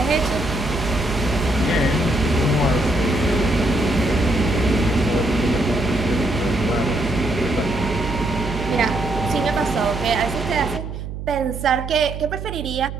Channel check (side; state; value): right; noise; hum, 8 dB below the sound